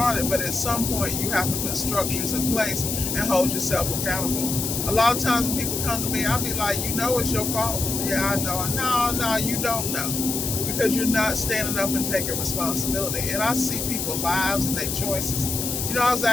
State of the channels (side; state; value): left; noise; hiss, 2 dB below the sound